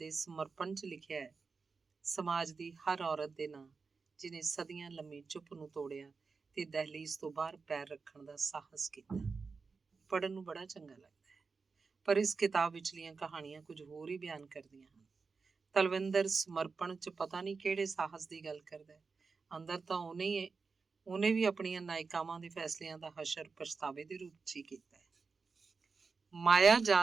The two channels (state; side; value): quieter; left; 4.7 dB